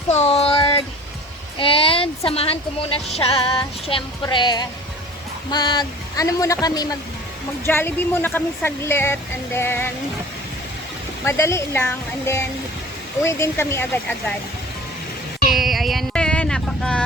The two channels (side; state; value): both; normal; correlation 0.44